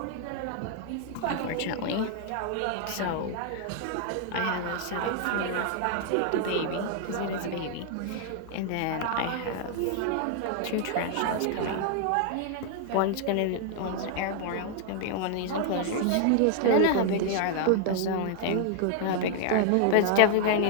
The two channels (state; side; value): different; both; correlation 0.00